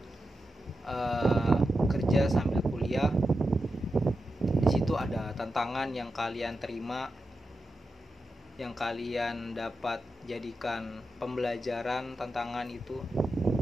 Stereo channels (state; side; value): normal; both; correlation 0.89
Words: kerja sambil kuliah, di situ ada tantangan yang kalian terima, yang kalian dapat jadikan pembelajaran tantangan itu,